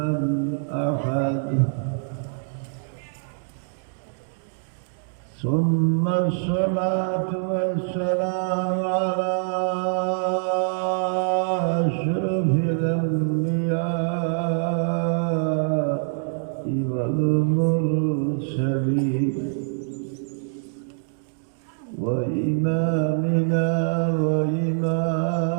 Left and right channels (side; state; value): left; silent; digital silence